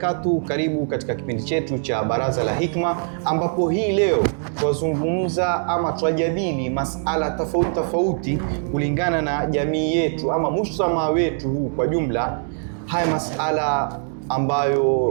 Karibu katika kipindi chetu cha Baraza la Hikma, ambapo hii leo twazungumza ama twajadili masala tofauti kulingana na jamii yetu ama mujtamaa wetu huu kwa jumla. Haya masala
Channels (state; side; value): silent; left; digital silence